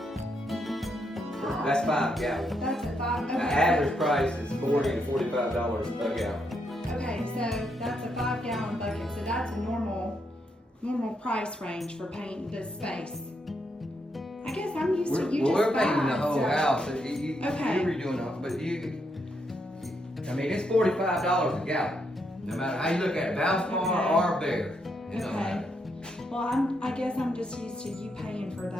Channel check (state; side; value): normal; both; correlation 0.79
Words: That's 5 gallons. That's a 5. The Okay. average price is $40 to $45 a gallon. Okay, so that's a 5-gallon bucket. So that's a normal price range for painting this space. I guess I'm used to you just We're painting buying the whole stuff. house. Okay. You're redoing it, but I mean, it's $45 a gallon. No matter how you look at it, Valspar or Bear. It don't Okay. matter. Well, I guess I'm just used to you paying for